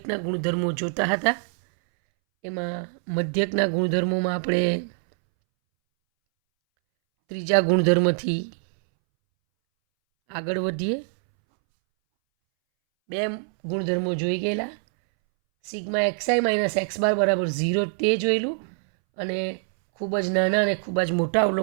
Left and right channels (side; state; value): left; silent; 62 dB below the other